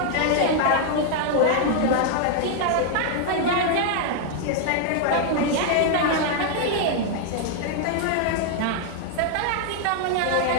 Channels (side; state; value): both; different; correlation 0.00